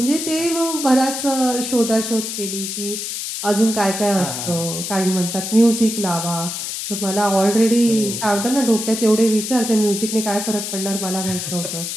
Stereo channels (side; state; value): left; noise; hiss, 5 dB below the sound